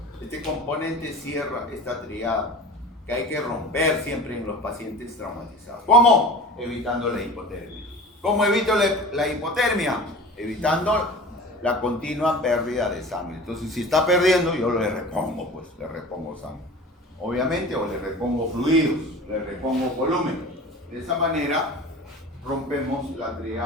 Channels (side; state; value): both; normal; correlation 0.38